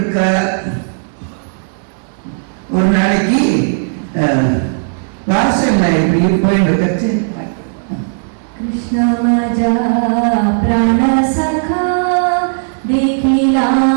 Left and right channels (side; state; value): left; silent; 67 dB below the other